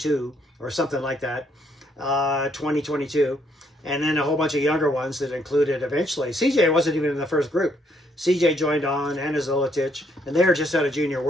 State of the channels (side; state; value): both; normal; correlation 0.71